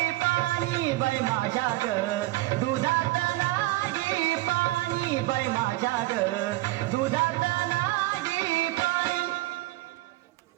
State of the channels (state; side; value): quieter; left; 18.7 dB